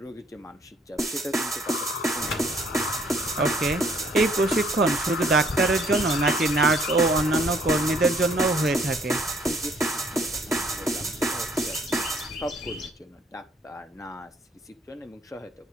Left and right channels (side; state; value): both; normal; correlation 0.63